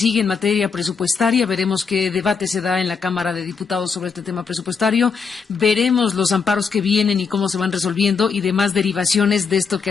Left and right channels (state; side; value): quieter; right; 5.6 dB